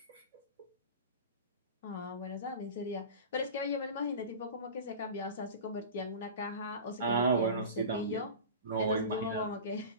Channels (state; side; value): inverted; both; correlation -0.32